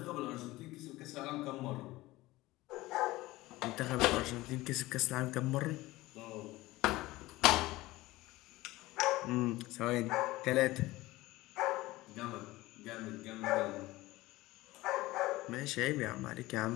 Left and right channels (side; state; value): right; quieter; 18.8 dB